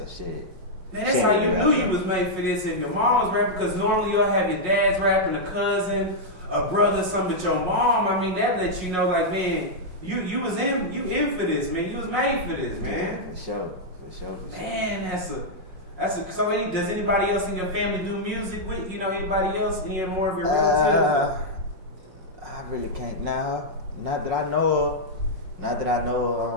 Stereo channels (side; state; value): left; late; 5.6 ms